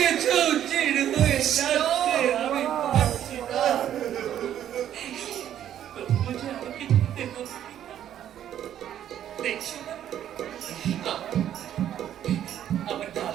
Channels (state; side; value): quieter; left; 10.7 dB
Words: চিড় হয়ে যাচ্ছে, আমি পারছি না। তবুও যে আমাকে যেতে হবে। দেখছো না আমার